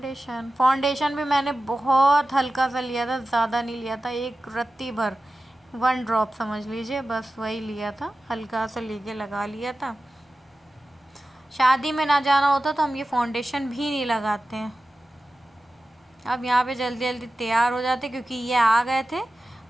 फाउंडेशन भी मैंने बहुत हल्का सा लिया था, ज़्यादा नहीं लिया था, एक रत्ती भर, 1 ड्रॉप समझ लीजिए, बस वही लिया था, हल्का सा लेके लगा लिया था। शादी में ना जाना होता तो हम ये फाउंडेशन भी नहीं लगाते हैं। अब यहाँ पे जल्दी जल्दी तैयार हो जाते क्योंकि ये आ गए थे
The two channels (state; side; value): normal; both; correlation 0.94